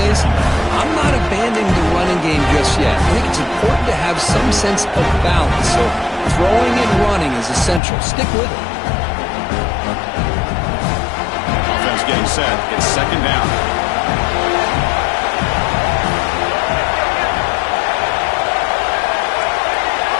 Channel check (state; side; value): drops out; right; at 7.8 s